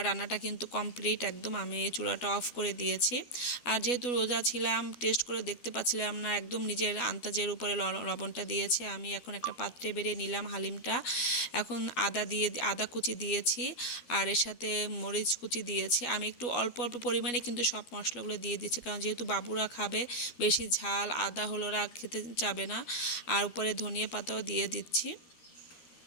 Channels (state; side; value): late; right; 12 ms